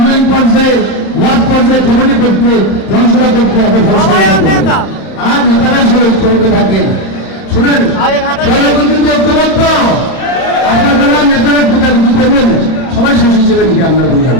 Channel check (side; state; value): right; late; 31 ms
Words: পর্যায়ে, ওয়ার্ড পর্যায়ে কমিটি করতে, জনসভা করতে হবে। আর নেতারা সবাই ঐক্যবদ্ধ থাকেন। শুনেন, কিন্তু ঐক্যবদ্ধ আপনারা নেতারা কোথায় বুঝতে পারবেন, সবাই শেষ হিসেবে লিখে আমরা বললাম,